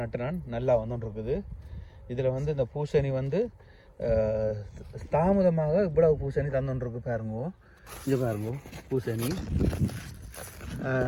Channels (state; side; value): identical; both; correlation 1.00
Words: நட்டு நான் நல்லா வந்துட்டு இருக்குது. இதில் இந்த பூசணி தாமதமாக இவ்வளவு பூசணி தந்துருக்கு பாருங்க. இங்கே பாருங்க, பூசணி